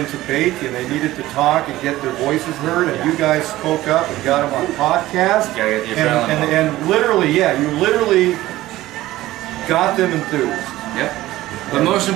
to bake, and they needed to talk and get their voices heard. And you guys spoke up and got them on podcast. And literally, you literally got them enthused. Yep. But most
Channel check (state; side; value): quieter; left; 16.3 dB